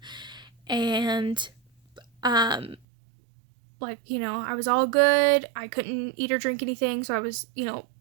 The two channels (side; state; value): left; drops out; at 2.8 s